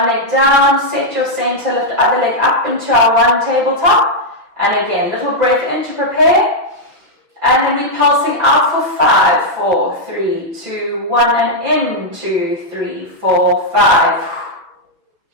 leg down, set your center, lift the other leg up into our one tabletop. And again, little breath in to prepare. And then we're pulsing out for 5, 4, 3, 2, 1, and in, 2, 3, 4, 5.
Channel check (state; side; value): late; left; 5.9 ms